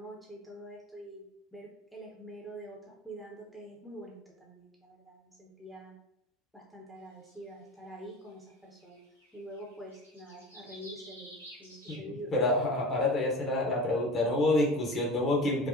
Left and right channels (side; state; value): both; normal; correlation 0.35